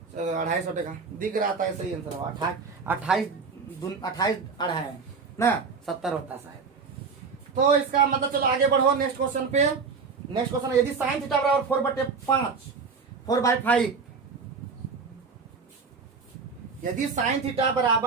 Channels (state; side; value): quieter; left; 5.0 dB